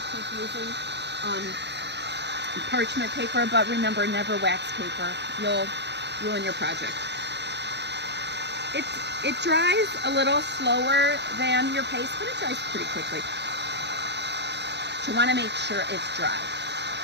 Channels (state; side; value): late; left; 0.50 ms